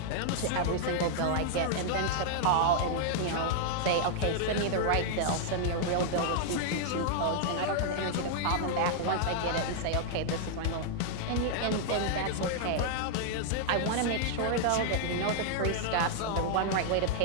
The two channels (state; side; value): different; both; correlation -0.01